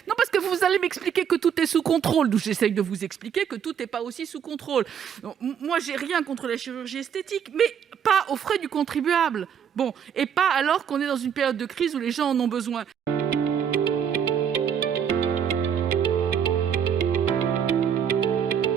Non, parce que vous allez m'expliquer que tout est sous contrôle. Donc j'essaye de vous expliquer que tout n'est pas aussi sous contrôle. Donc, moi, j'ai rien contre la chirurgie esthétique, mais pas aux frais du contribuable. Bon, et pas alors qu'on est dans une période de crise où les gens en ont besoin.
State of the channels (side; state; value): left; quieter; 8.1 dB